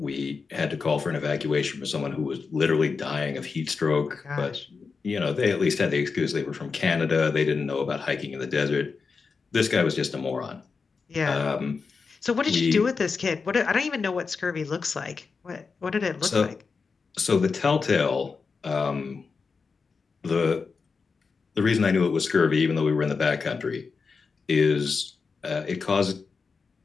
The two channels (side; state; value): right; quieter; 4.9 dB